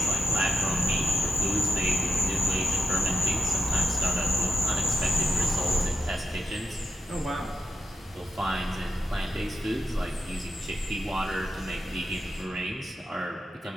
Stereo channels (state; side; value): normal; both; correlation 0.86